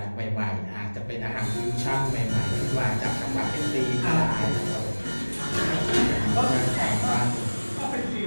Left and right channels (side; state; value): both; inverted; correlation -1.00